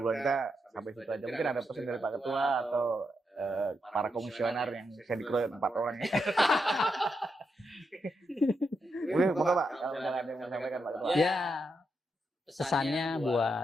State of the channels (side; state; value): both; normal; correlation 0.83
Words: kita sampai situ aja. Mungkin ada pesan dari Pak Ketua atau para komisioner yang bisa dikeroyok 4 orang ya. Mungkin moga Pak, kalau misalnya ada yang mau sampaikan Pak Ketua. Ya, pesannya